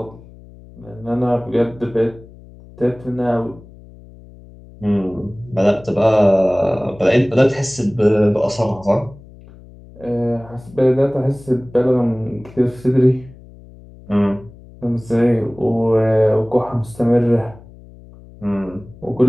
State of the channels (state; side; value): noise; left; hum, 21 dB below the sound